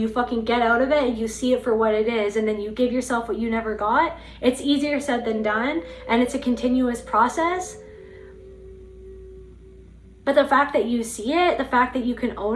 fucking get out of it and you see it for what it is, and then you give yourself what you never got. It's easier said than done, and it's a continuous process. But the fact that you see it, the fact that you can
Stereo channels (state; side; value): identical; both; correlation 1.00